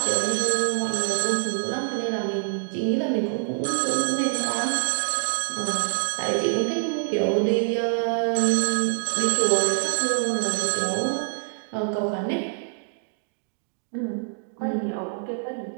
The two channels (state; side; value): silent; left; digital silence